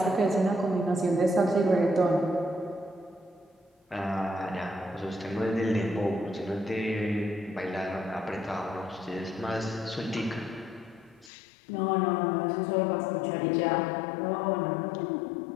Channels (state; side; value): drops out; right; at 11.3 s